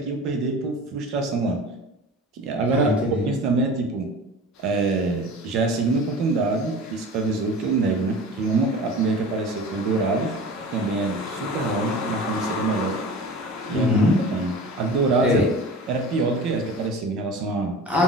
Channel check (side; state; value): both; normal; correlation 0.37